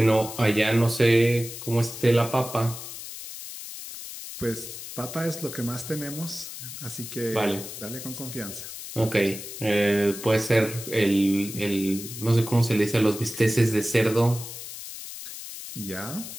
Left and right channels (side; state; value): left; noise; hiss, 11 dB below the sound